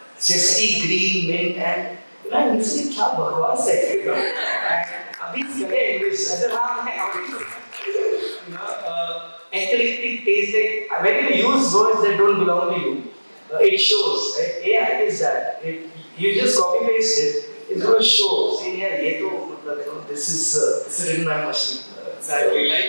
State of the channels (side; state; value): both; inverted; correlation -1.00